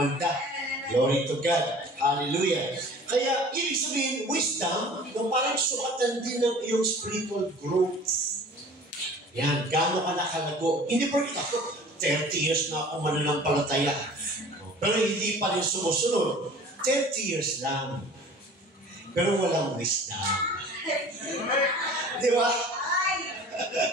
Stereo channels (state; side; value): normal; both; correlation 0.45